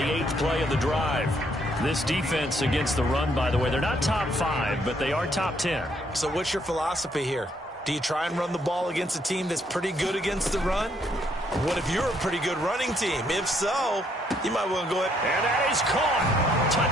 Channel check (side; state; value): both; normal; correlation 0.71